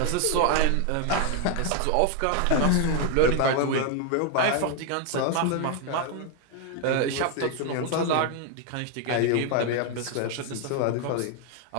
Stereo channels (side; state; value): both; different; correlation 0.01